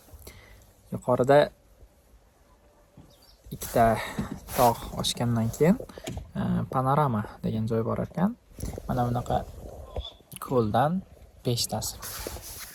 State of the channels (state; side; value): identical; both; correlation 1.00